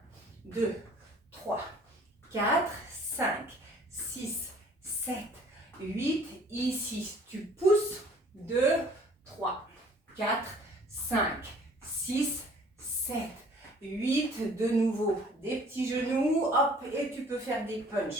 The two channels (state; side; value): normal; both; correlation 0.55